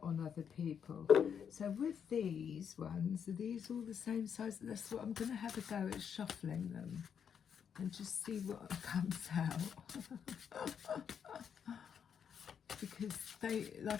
on other people. So with these ones, are these all the same size? That's what I'm going to have a go at, shuffling them and just see what comes out. Because they,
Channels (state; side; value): quieter; right; 7.7 dB